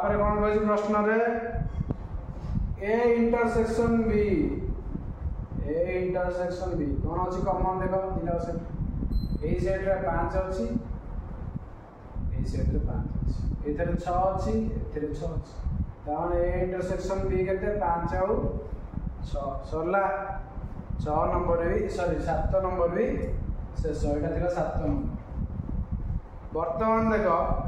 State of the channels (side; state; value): both; identical; correlation 1.00